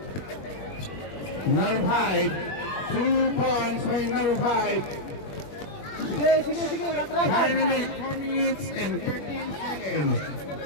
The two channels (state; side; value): late; right; 21 ms